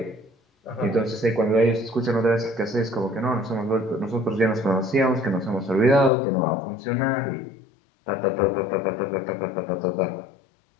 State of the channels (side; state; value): right; drops out; at 6.1 s